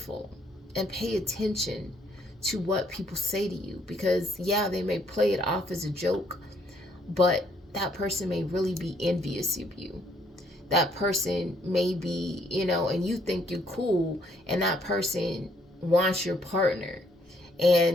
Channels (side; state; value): both; normal; correlation 0.68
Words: and pay attention to what people say to you, because yeah, they may play it off as a joke, but that person may really be envious of you. That person may be, and you think you're cool, and that person wants your partner.